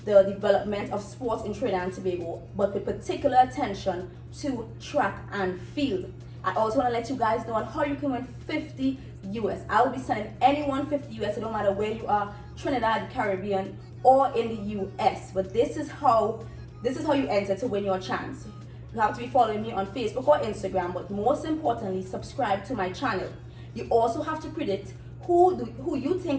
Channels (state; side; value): identical; both; correlation 1.00